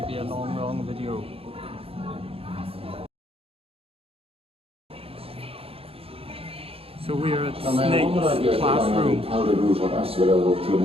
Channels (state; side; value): late; left; 0.28 ms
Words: be a long video. So we're at Snape's classroom. Powdered root of asphodel through an